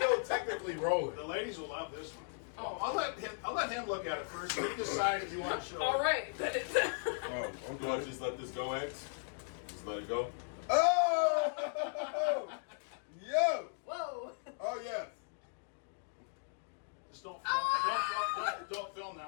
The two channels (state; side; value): silent; right; digital silence